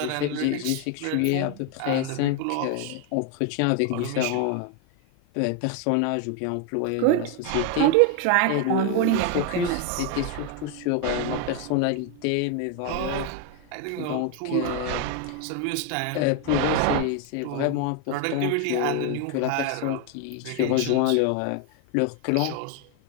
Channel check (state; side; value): different; both; correlation 0.01